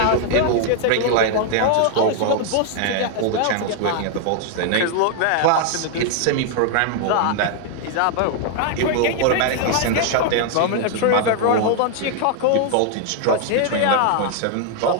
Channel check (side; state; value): both; different; correlation 0.00